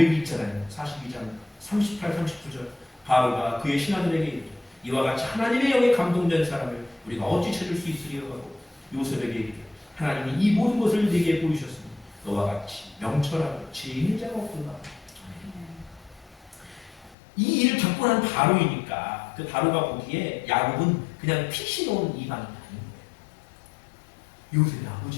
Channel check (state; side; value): drops out; right; at 17.2 s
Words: 있잖아요. 42장 38, 39절. 바로가 그의 신하들에게 이르되 이와 같이 하나님의 영에 감동된 사람을 우리가 어찌 찾을 수 있으리요 하고 요셉에게 이르되 하나님이 이 모든 것을 네게 보이셨으니 너와 같이 명철하고 지혜 자가 없도다. 이 일을 겪고 난 바로이니까 그 바로가 보기에 야곱은 그냥 핏이 놓은 이방이 아닌 거예요. 요셉의